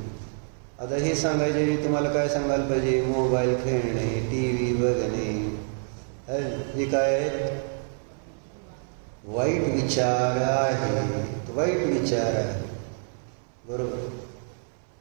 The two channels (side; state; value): left; silent; 59 dB below the other